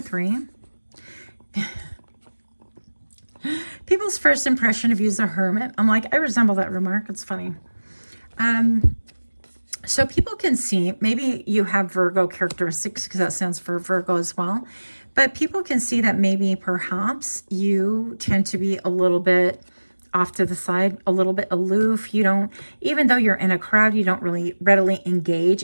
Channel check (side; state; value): both; inverted; correlation -1.00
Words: 3. People's first impression of you is a hermit. I'm like, I resemble that remark. It's funny. So people can see, maybe you have Virgo characteristics because that stands for Virgo as well. But people can see that maybe perhaps you tend to be a little bit off to the side, a little bit aloof. You don't, even though you're in a crowd, you don't really readily engage